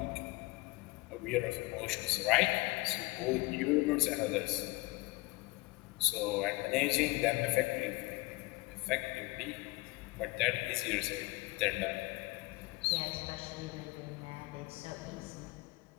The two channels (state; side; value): quieter; right; 22.5 dB